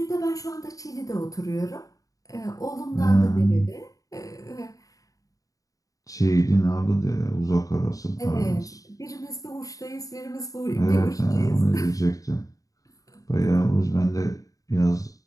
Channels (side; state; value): right; late; 0.17 ms